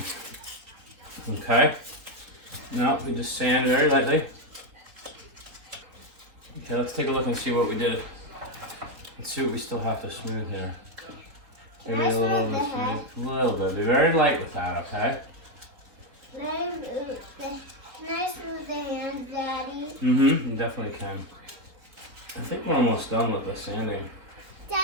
Okay. Now we just sand very lightly. Okay, let's take a look and see what we did. Let's see what we still have to smooth here. Maybe a little bit smooth. A little bit. Be very light with that, okay? Can I smooth the hands, Daddy? Mm-hmm. You definitely can. I think we're almost done with the sanding.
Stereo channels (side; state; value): left; late; 3.8 ms